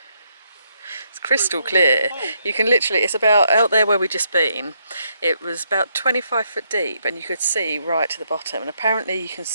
It's crystal clear. You can literally. It's about out there where we just been. It was about 25 foot deep, and you could see right to the bottom. And apparently, you can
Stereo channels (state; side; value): inverted; both; correlation -0.76